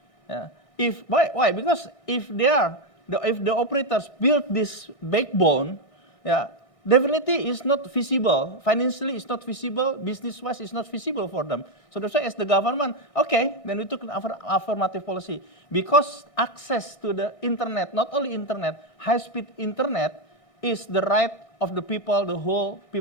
Why? Because if the operators build this backbone, definitely it's not feasible. Financially, it's not feasible. Business-wise, it's not feasible for them. So that's why, as the government, okay, then we took an affirmative policy. Because access to the internet, not only internet, high-speed internet, is the right of the people, the whole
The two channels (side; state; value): right; late; 1.6 ms